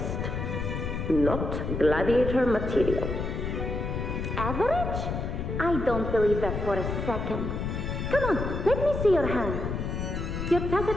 Not gladiator material. Average? I don't believe that for a second. Come on, let me see your hand. Your tacit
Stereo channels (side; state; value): left; noise; rumble, 3 dB below the sound